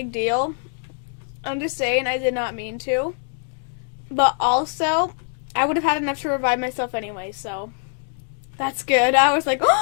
deal. I'm just saying I did not mean to. But also, I would have had enough to revive myself anyway, so that's good. I was like,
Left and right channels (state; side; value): silent; right; digital silence